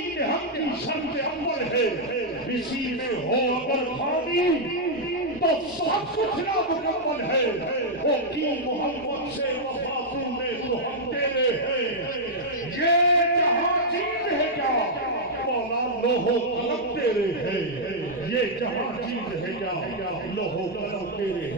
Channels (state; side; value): noise; left; hum, 27 dB below the sound